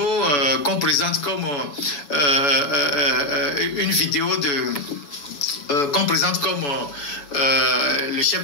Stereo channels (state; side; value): late; right; 7.1 ms